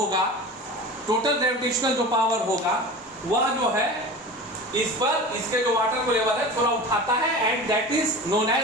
टोटल ग्रेविटेशनल जो पावर होगा वह जो है इस पर इसके जो वाटर को लेवल है थोड़ा उठाता है, and that is known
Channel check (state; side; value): normal; both; correlation 0.34